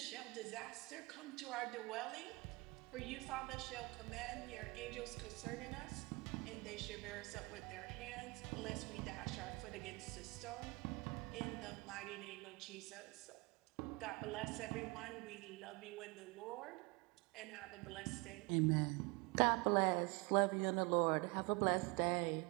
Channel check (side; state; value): left; quieter; 26.5 dB